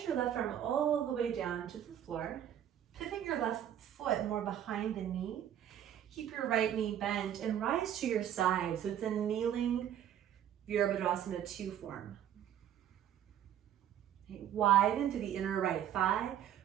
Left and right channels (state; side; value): quieter; left; 10.4 dB